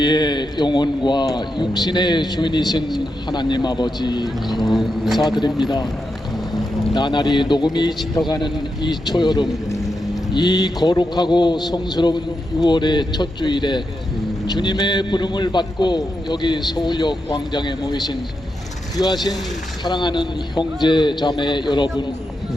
영혼과 육신의 주인이신 하나님 아버지 감사드립니다. 나날이 녹음이 짙어가는 이 초여름, 이 거룩하고 성스러운 6월의 첫 주일에 주님의 부름을 받고 여기 서울역 광장에 모이신 귀하신 사랑하는 형제 자매 여러분,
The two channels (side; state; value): both; normal; correlation 0.86